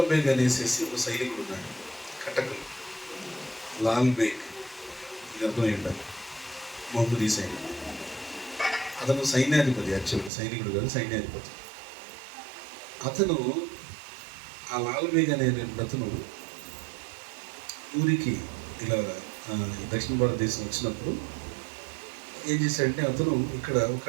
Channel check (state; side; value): drops out; left; at 10.3 s